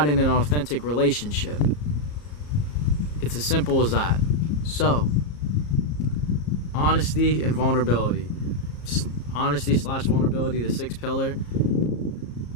in an authentic relationship. It's as simple as that. So, honesty and vulnerability. Honesty/vulnerability, the sixth pillar.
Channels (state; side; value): late; right; 34 ms